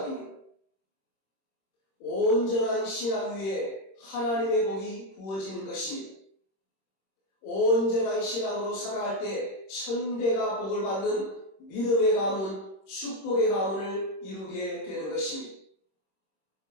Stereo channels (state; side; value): late; right; 26 ms